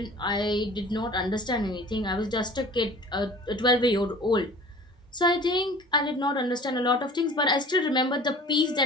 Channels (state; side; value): normal; both; correlation 0.45